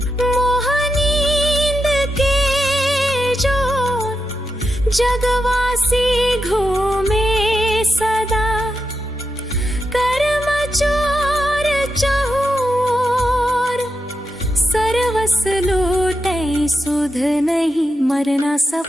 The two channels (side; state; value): both; normal; correlation 0.87